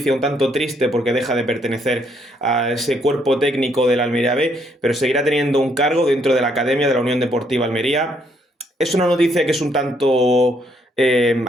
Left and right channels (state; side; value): normal; both; correlation 0.71